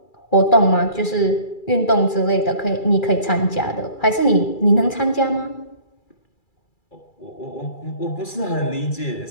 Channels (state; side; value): late; right; 2.3 ms